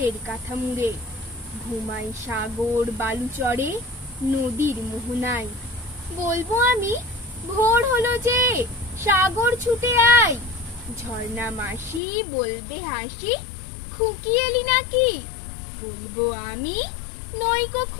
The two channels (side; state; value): right; drops out; at 12.0 s